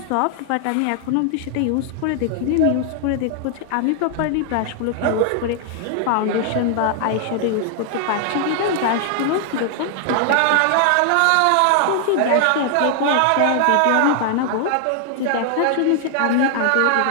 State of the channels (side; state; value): both; different; correlation 0.00